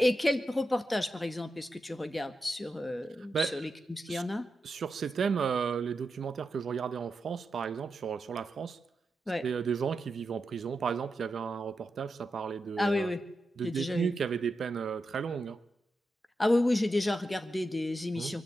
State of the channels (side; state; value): both; normal; correlation 0.88